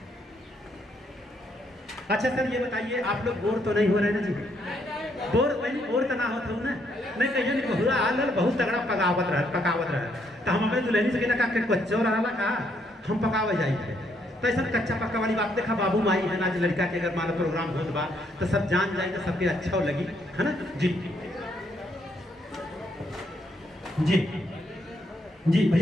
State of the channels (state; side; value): normal; both; correlation 0.73